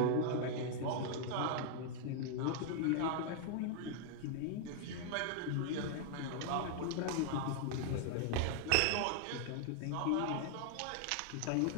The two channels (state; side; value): different; both; correlation -0.01